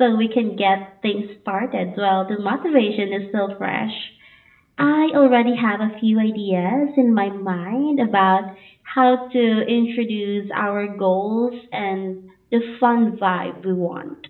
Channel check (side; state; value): both; identical; correlation 1.00